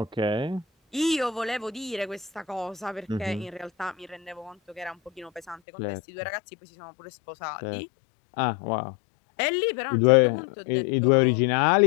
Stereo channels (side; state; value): right; drops out; at 5.6 s